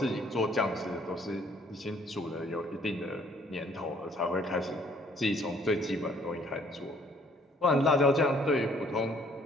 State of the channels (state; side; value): normal; both; correlation 0.61